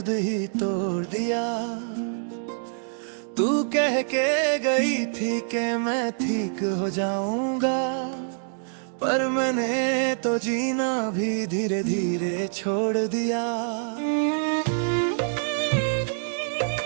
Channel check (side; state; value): left; silent; digital silence